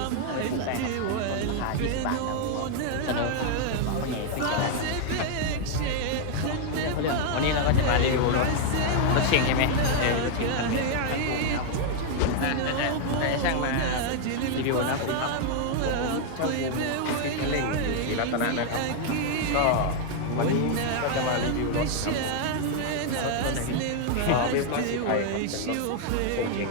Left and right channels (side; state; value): both; different; correlation 0.00